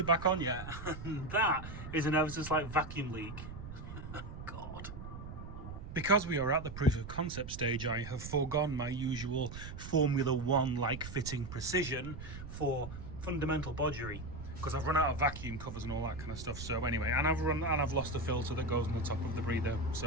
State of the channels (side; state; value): right; noise; rumble, 10 dB below the sound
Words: back on yet. That is an ever so slight vacuum leak. God. Because we are at the proof of concept stage, I have foregone my usual Formula 1 like fitting precision for fundamental bodgery, because I've run out of vacuum covers and all that kind of stuff. So anyway, and I've lost the filter that goes on the top of the breather,